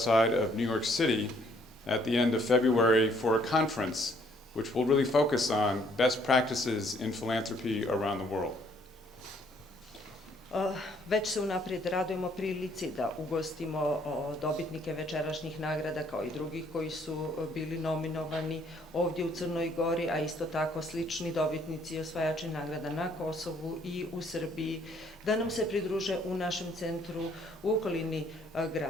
of New York City at the end of February for a conference which will really focus on best practices in philanthropy around the world. Već se unaprijed radujemo prilici da ugostimo dobitnike večerašnjih nagrada kao i drugih koji su bili nominovani ovdje u Crnoj Gori, a isto tako slični dobitnici i osvajači nagrada na Kosovu i u Srbiji, da nam se pridruže u našem centru u okolini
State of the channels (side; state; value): both; normal; correlation 0.64